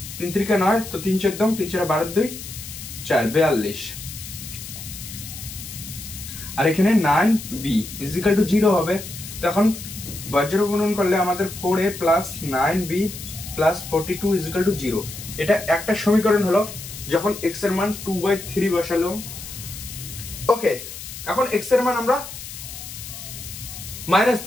3 × 3 = 9, তো 3 × 14 3 × 4 = 2 4 42। আর এখানে 9b ইজিক্যাল টু 0 হবে। তো এখন বজ্র গুণন করলে আমাদের 4a plus 9b plus 42 is equal to 0। এটা একটা সমীকরণ হলো। যখন x এর মান 2/3 বসালো, ওকে, এখন x এর মান আমরা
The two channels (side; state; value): left; noise; hiss, 11 dB below the sound